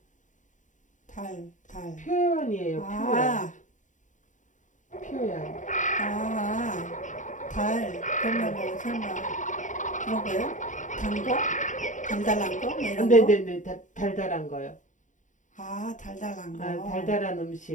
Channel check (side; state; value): right; late; 0.36 ms